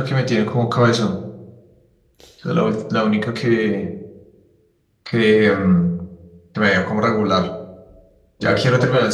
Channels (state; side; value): identical; both; correlation 1.00